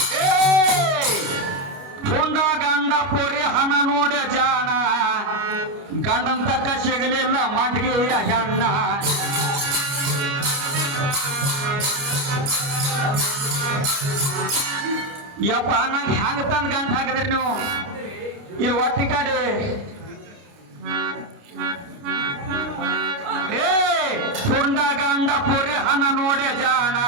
ಹುಂಡ ಗಂಡ ಪೋರಿ ಹಣ ನೋಡ ಜಾಣ ಗಂಡನ್ ತಕ್ಕ ಸಿಗಲಿಲ್ಲ ಮಂಟಿಗೆಯ ಹೆಣ್ಣ ಯಪ್ಪ ನಂಗೆ ಹ್ಯಾಂಗ ತಂದ್ ಗಂಟ ಹಾಕಿದ್ರಿ ನೀವು ಇಲ್ಲಿ ಒತ್ತಿ ಕಡೆ ಹುಂಡ ಗಂಡ ಪುರಿ ಹಣ ನೋಡೆ ಜಾಣ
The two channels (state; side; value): late; left; 29 ms